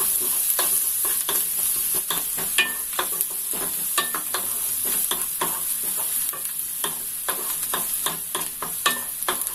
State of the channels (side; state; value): both; identical; correlation 1.00